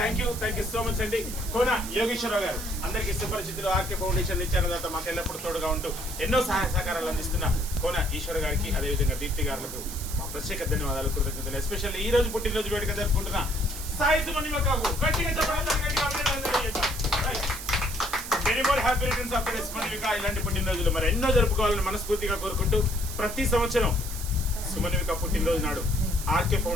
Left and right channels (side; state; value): right; noise; hiss, 9 dB below the sound